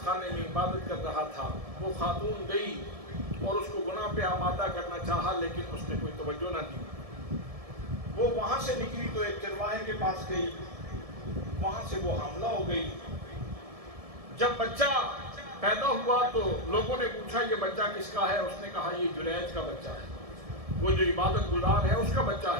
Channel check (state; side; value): late; left; 1.7 ms